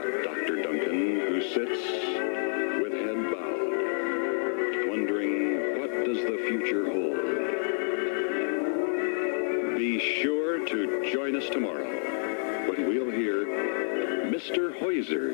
Dr. Duncan who sits with head bowed, wondering what does the future hold. Be sure to join us tomorrow when we'll hear Mr.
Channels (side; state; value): right; silent; 55 dB below the other